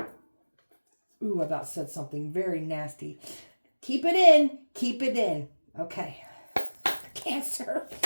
Ooh, I about said something very nasty. Keep it in. Keep it in. Okay. Cancer.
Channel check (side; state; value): both; inverted; correlation -1.00